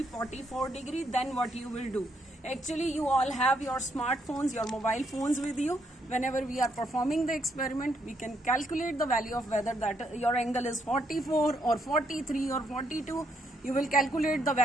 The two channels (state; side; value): normal; both; correlation 0.74